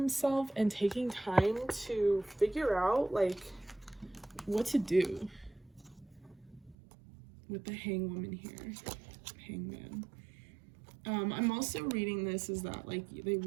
and taking time to figure out like what to do with the Hangwoman here. Hangman. I'm also reading this is that like they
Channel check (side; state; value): left; drops out; at 6.8 s